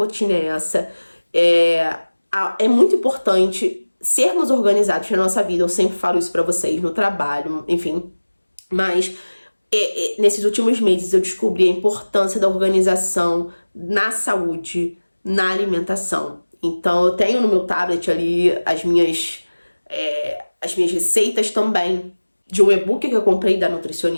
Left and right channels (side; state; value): both; inverted; correlation -1.00